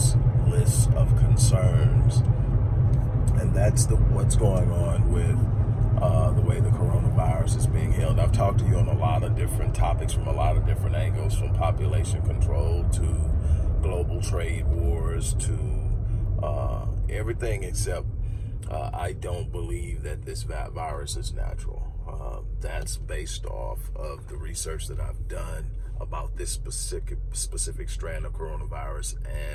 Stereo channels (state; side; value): identical; both; correlation 1.00